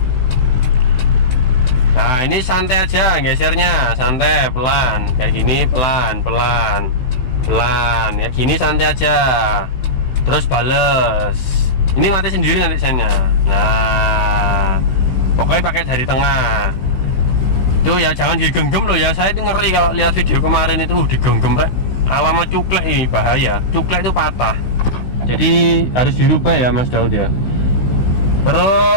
Nah ini santai aja gesernya, santai, pelan, kayak gini, pelan, pelan, pelan, ya gini santai aja. Terus bales, ini mati sendiri nanti sennya. Nah pokoknya pakai jari tengah. Tuh ya jangan digenggam loh ya, saya itu ngeri kalau lihat video kemarin itu digenggam rek. Alamat cuklek ini bahaya, cuklek itu patah. Jadi harus dirubah ya Mas Daud ya.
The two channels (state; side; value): late; right; 16 ms